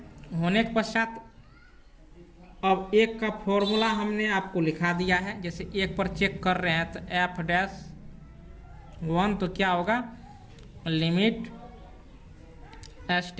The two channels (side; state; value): both; identical; correlation 1.00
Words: होने के पश्चात अब एक का फॉर्मूला हमने आपको लिखा दिया है, जैसे एक पर चेक कर रहे हैं तो एफ डैश 1 तो क्या होगा, limit h